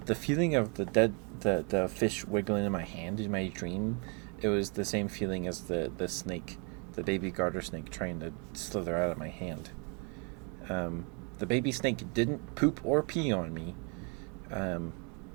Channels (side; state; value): left; quieter; 35.7 dB